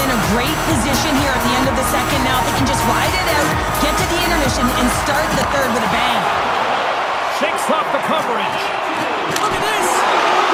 in a great position here at the end of the second. Now they can just ride it out, get to the intermission, and start the third with a bang. Shakes off the coverage. Look at this!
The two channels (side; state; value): both; identical; correlation 1.00